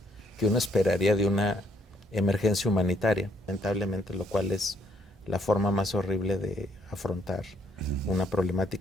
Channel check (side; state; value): both; normal; correlation 0.69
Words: que uno esperaría de una emergencia humanitaria, lamentablemente, lo cual es la forma más horrible de afrontar una